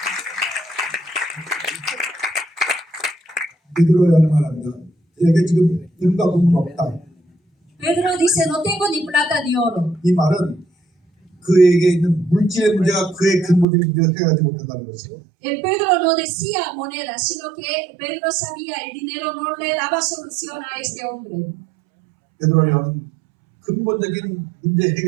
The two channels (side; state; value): left; drops out; at 13.7 s